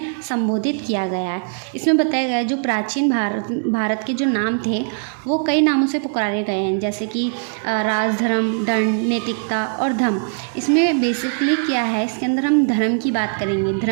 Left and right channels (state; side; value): silent; left; 60 dB below the other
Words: संबोधित किया गया है। इसमें बताया गया है जो प्राचीन भारत के जो नाम थे वो कई नामों से पुकारे गए हैं, जैसे कि राज, धर्म, दंड, नैतिकता और धम। इसमें बेसिकली क्या है, इसके अंदर हम धर्म की बात करेंगे,